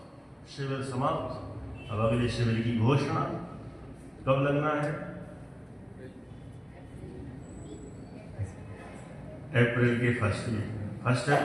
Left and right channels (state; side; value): identical; both; correlation 1.00